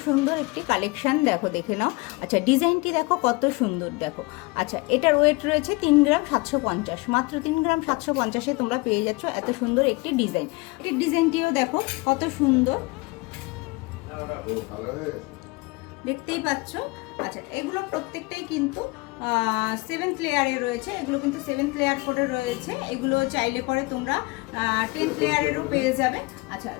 সুন্দর একটি কালেকশন, দেখো দেখে নাও। আচ্ছা, ডিজাইনটি দেখো কত সুন্দর, দেখো। আচ্ছা, এটার ওয়েট রয়েছে 3 গ্রাম 750। মাত্র 3 গ্রাম 750-এ তোমরা পেয়ে যাচ্ছ এত সুন্দর একটি ডিজাইন। এই ডিজাইনটিও দেখো কত সুন্দর, দেখতেই পাচ্ছ। আচ্ছা, এগুলো প্রত্যেকটাই কিন্তু 7th লেয়ারে রয়েছে। এগুলো কিন্তু 7th লেয়ার করে রয়েছে। এগুলো চাইলে পরে তোমরা 10th লেয়ারেরও পেয়ে যাবে। আচ্ছা,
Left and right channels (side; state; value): right; quieter; 24.9 dB